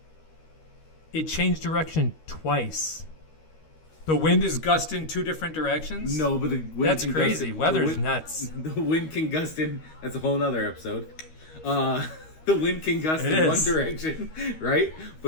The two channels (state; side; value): late; right; 13 ms